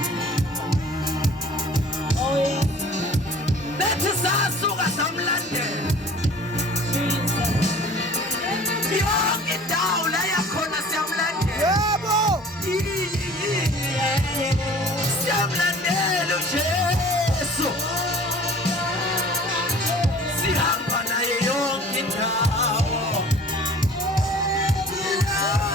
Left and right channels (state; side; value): normal; both; correlation 0.47